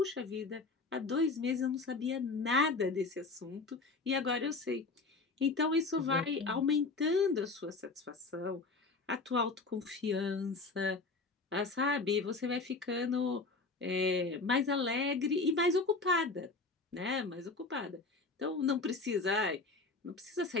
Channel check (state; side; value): quieter; right; 3.8 dB